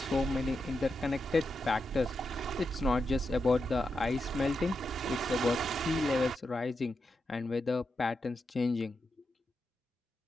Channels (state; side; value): normal; both; correlation 0.87